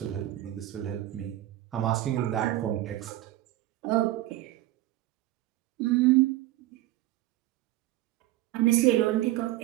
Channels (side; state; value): left; quieter; 15.6 dB